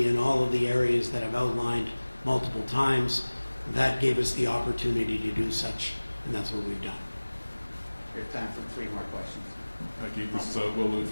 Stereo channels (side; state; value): both; inverted; correlation -1.00